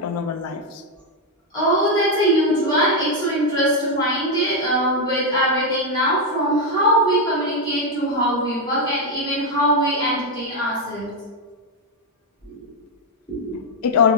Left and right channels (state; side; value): normal; both; correlation 0.03